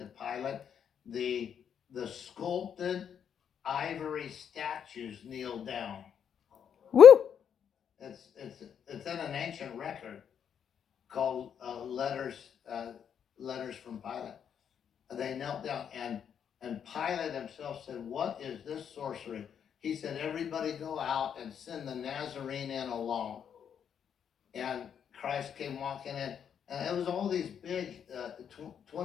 Pilate, the sculpted ivory statues kneeled down? Woo! It's in an ancient record called Letters from Pilate. They knelt down, and Pilate himself said, "What is this sorcery?" He said, "Everybody go out and send the Nazarene in alone." And Christ came walking in, and it was all these big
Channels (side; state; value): right; quieter; 8.1 dB